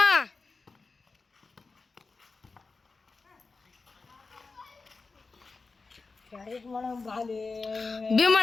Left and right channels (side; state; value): right; quieter; 4.1 dB